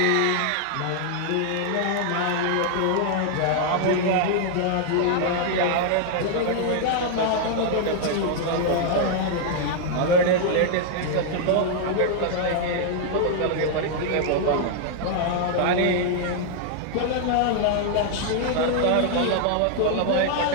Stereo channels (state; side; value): different; both; correlation 0.00